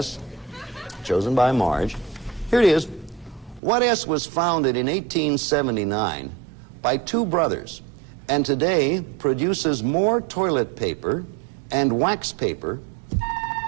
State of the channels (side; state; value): left; drops out; at 3.6 s